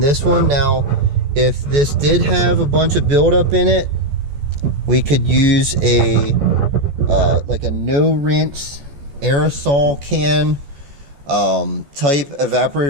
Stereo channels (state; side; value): late; left; 14 ms